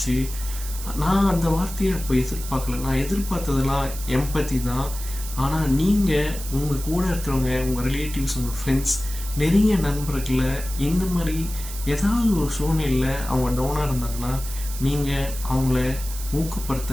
நான் அந்த வார்த்தையை அப்போ எதிர்பார்க்கல. நான் எதிர்பார்த்ததெல்லாம் எம்பத்தி தான். ஆனால் நீங்கள் உங்கள் கூட இருக்கிறவங்க, உங்கள் ரிலேட்டிவ்ஸ், உங்கள் ஃப்ரெண்ட்ஸ், நெருங்கிய நண்பர்களை இந்த மாதிரி ஏதாவது ஒரு சூழ்நிலையில் அவங்க டவுனாக இருந்தாங்கன்னா நீங்கள் அவங்கள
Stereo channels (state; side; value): noise; right; hiss, 11 dB below the sound